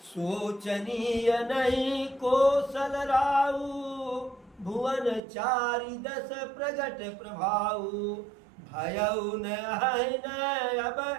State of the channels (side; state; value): left; drops out; at 5.2 s